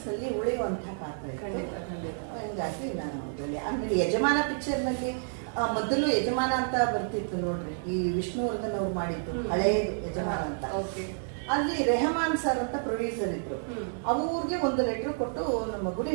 ಉಳಿಯುವಂತಹ ಪಾತ್ರ ಇತ್ತು. ಹಿಂಗಾಗಿ ನಾನು ಆಮೇಲೆ ಯಜಮಾನ ಪಿಕ್ಚರ್ ನಲ್ಲಿ ಮೊದಲು ಯಜಮಾನ ಅಂತ ಬರ್ತಿತ್ತು ನೋಡ್ರಿ, ಈ ವಿಷ್ಣುವರ್ಧನ್ ಅವ್ರು ಮಾಡಿದ್ದು ಹಳೆಯದು ಯಜಮಾನ ಅಂತ. ಅಲ್ಲಿ ರೆಹಮಾನ್ ಸರ್ ಅಂತ ಪ್ರೊಡ್ಯೂಸರ್ ಇದ್ರು. ಅವ್ರಿಗೆ ಒಂದು ಲೆಟರ್ ಕೊಟ್ಟು ನಮ್ಮ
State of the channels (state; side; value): silent; left; digital silence